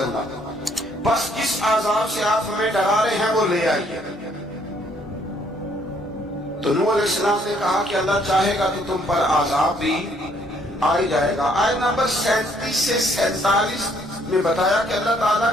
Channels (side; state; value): both; normal; correlation 0.66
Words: اللہ، بس جس عذاب سے آپ ہمیں ڈرا رہے ہیں وہ لے آئیے۔ تو نوح علیہ السلام نے کہا کہ اللہ چاہے گا تو تم پر عذاب بھی آ جائے گا۔ آیت نمبر 37 سے 47 میں بتایا کہ اللہ تعالیٰ